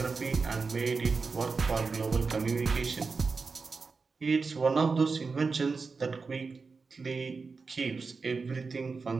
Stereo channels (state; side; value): quieter; left; 4.6 dB